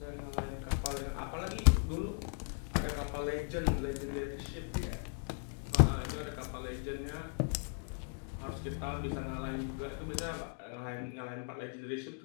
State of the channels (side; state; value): right; silent; 53 dB below the other